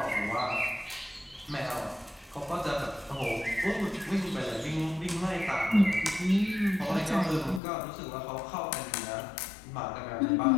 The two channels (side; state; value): right; drops out; at 7.6 s